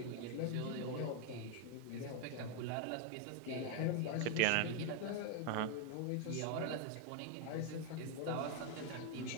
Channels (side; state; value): both; different; correlation 0.01